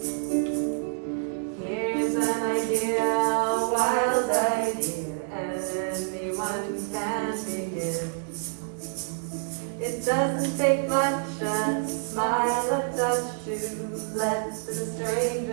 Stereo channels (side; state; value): left; silent; digital silence